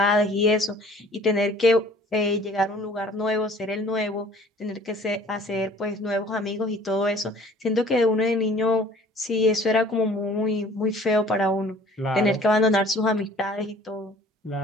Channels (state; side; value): normal; both; correlation 0.51